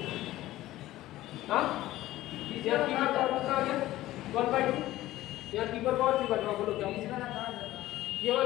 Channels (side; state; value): right; quieter; 15.7 dB